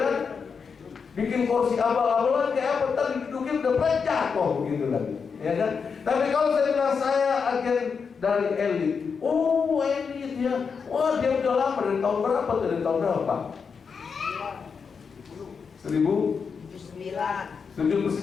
Bikin kursi abal-abalan kayak apa? Tadi didudukin udah jatuh begitu lagi, ya kan? Tapi kalau saya bilang saya agen dari elit, oh elit ya, wah dia udah lama, dari tahun berapa? Dari tahun berapa?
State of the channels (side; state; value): right; quieter; 5.8 dB